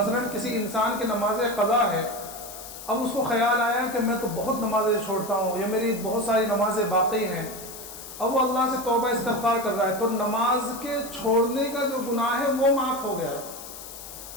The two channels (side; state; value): left; noise; hiss, 13 dB below the sound